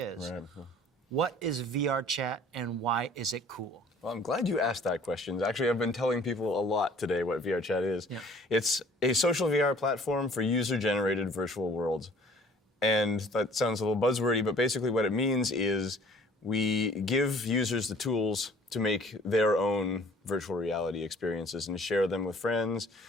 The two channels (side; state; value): both; normal; correlation 0.53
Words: Right. What is VRChat and why is it cool? Well, I'm glad you asked that question. Actually, I've been telling people a lot today what VRChat is. Yeah. It's a social VR platform for user-generated virtual worlds. And that sounds a little buzzwordy, but basically what it means is we give users the tools to make their own virtual reality experiences and share them with friends.